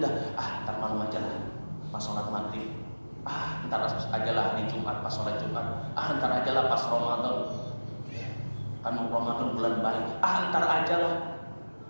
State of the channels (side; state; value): both; inverted; correlation -1.00